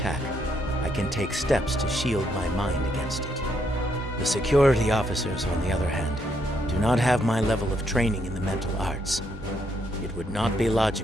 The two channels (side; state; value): both; normal; correlation 0.75